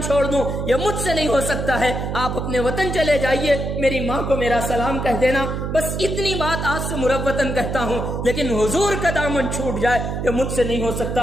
چھوڑ دوں یہ مجھ سے نہیں ہو سکتا ہے، آپ اپنے وطن چلے جائیے، میری ماں کو میرا سلام کہہ دینا، بس اتنی بات آج سے مروتاً کہتا ہوں، لیکن حضور کا دامن چھوٹ جائے یہ مجھ سے نہیں ہو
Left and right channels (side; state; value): right; noise; hum, 3 dB below the sound